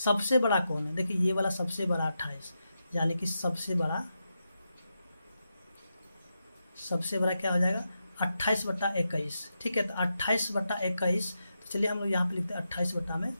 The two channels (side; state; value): both; inverted; correlation -0.87